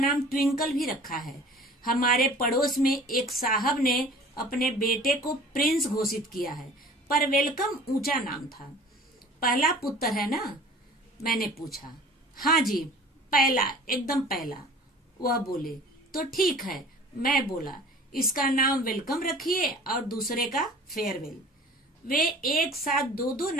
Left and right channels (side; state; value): both; normal; correlation 0.45